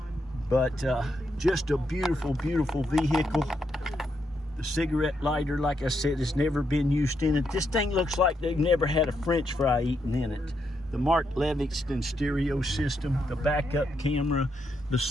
But just a beautiful, beautiful vehicle. The cigarette lighter, like I said, has never been used in it. This thing looks like they've never had a French fry eaten in it. The Mark Livingston stereo system, the backup camera, the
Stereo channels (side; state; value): both; normal; correlation 0.80